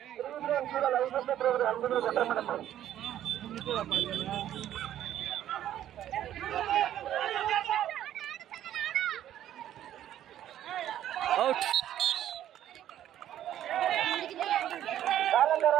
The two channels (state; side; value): quieter; left; 11.7 dB